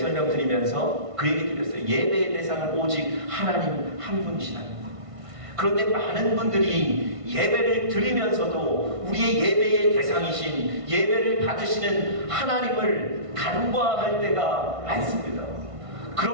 그 얘기 드렸어요. 예배의 대상은 오직 하나님 한 분이시다는 거. 그런데 많은 분들이 예배를 드리면서도 우리의 예배의 대상이신, 예배를 받으시는 하나님을 간과할 때가 많습니다.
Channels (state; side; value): late; left; 1.5 ms